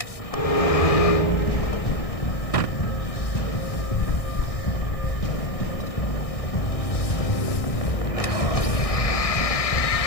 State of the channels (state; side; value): late; right; 1.6 ms